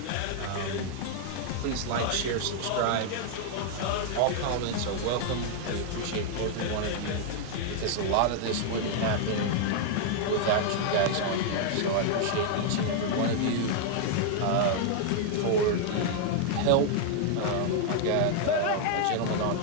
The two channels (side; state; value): both; different; correlation 0.00